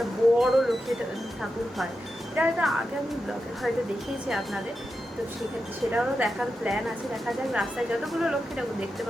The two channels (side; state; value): both; normal; correlation 0.89